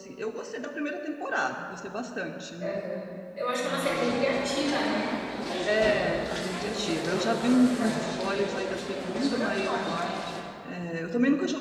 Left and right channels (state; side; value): identical; both; correlation 1.00